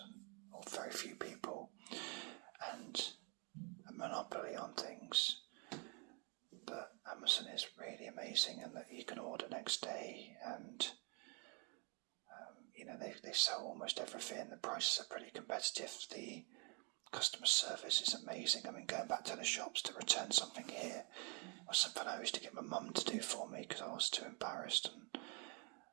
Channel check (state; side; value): quieter; left; 33.9 dB